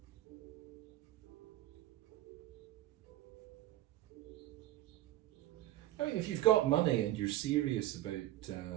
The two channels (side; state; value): left; quieter; 14.6 dB